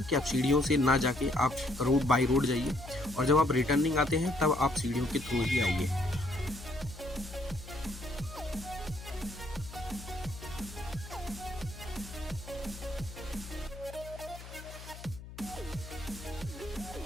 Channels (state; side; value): noise; left; hum, 14 dB below the sound